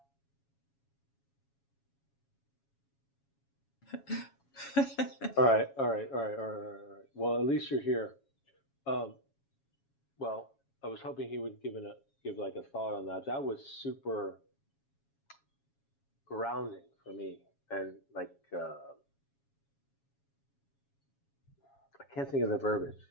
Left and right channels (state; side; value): late; right; 7.3 ms